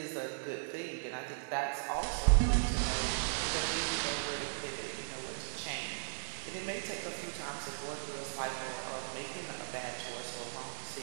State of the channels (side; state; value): left; silent; digital silence